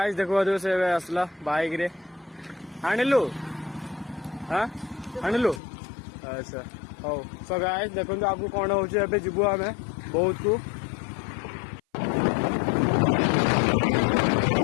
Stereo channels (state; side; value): drops out; right; at 5.6 s